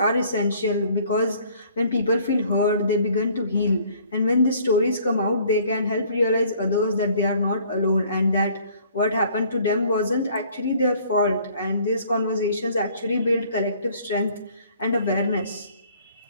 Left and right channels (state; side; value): inverted; both; correlation -0.57